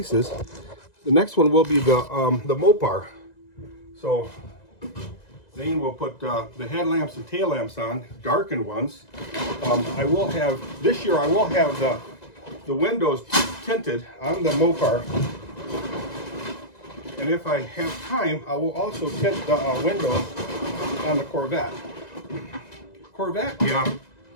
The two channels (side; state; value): right; late; 1.9 ms